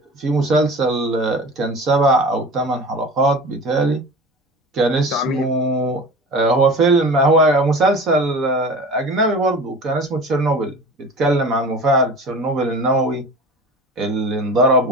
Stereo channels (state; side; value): normal; both; correlation 0.37